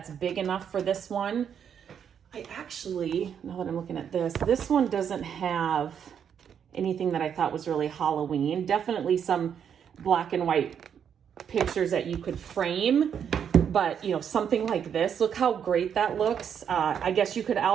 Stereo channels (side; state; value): left; quieter; 8.1 dB